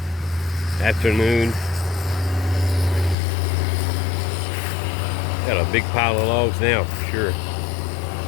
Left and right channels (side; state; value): right; drops out; at 3.2 s